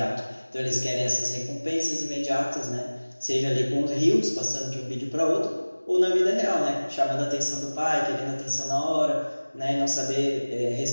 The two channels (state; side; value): inverted; both; correlation -1.00